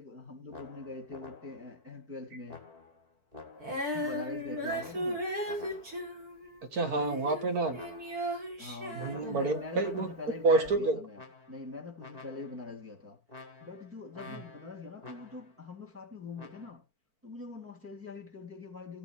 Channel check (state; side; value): late; left; 4.5 ms